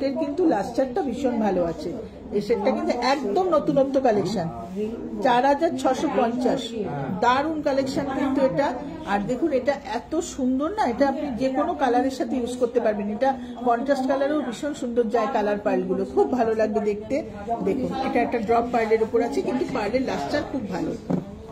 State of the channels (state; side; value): identical; both; correlation 1.00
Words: কিন্তু লাস্টারটা ভীষণ ভালো আছে, এই সেটটা কিন্তু একদম নতুনত্ব কালেকশন, 4650, দারুণ কালেকশন কিন্তু এটা। আর দেখুন এটা এত সুন্দর না, এটা আপনি যে কোনো কালারের সাথে ইউজ করতে পারবেন। এটা কন্ট্রাস্ট কালারেও ভীষণ সুন্দর যায় কালার পার্লগুলো, খুব ভালো লাগবে দেখতে। দেখুন এটা একটা ড্রপ পার্লের উপর আছে, কিন্তু পার্লের লাস্টার খুব ভালো।